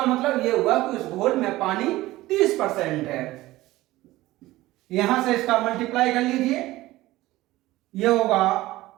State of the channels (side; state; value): left; quieter; 17.5 dB